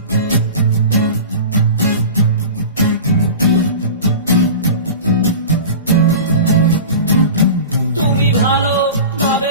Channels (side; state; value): both; inverted; correlation -0.34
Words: তুমি ভালো ভাবে